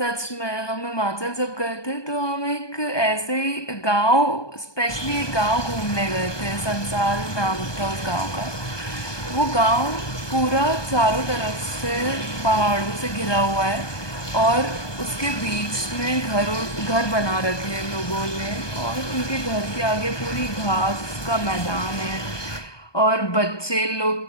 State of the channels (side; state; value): right; late; 1.2 ms